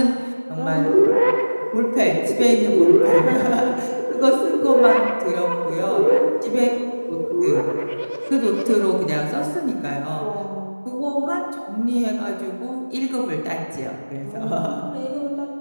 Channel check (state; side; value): inverted; both; correlation -1.00